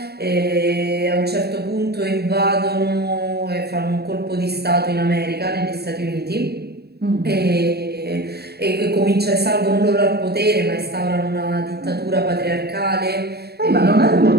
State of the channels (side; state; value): left; late; 0.47 ms